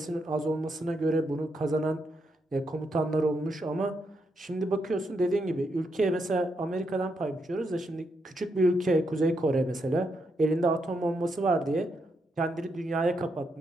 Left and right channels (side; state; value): both; normal; correlation 0.81